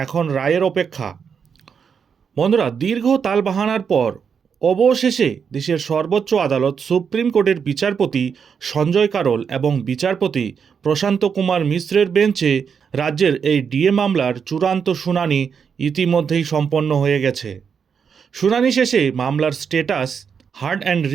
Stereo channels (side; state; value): left; quieter; 6.7 dB